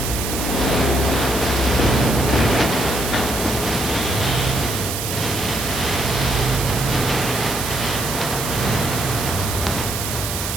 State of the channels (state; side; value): noise; right; hiss, 4 dB below the sound